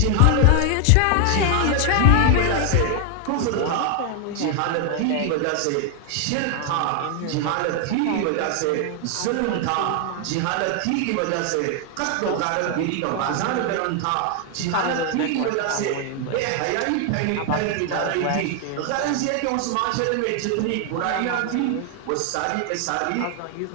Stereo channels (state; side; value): different; both; correlation 0.00